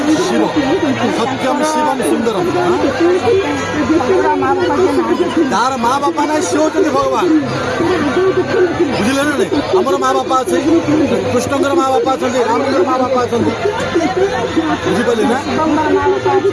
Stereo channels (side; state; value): both; identical; correlation 1.00